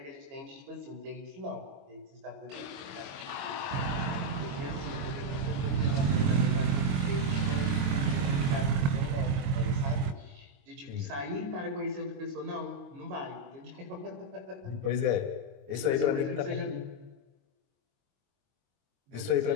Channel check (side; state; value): left; late; 22 ms